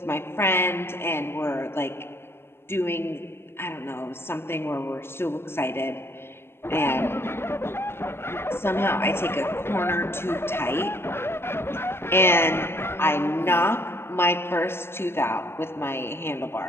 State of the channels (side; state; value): right; late; 0.12 ms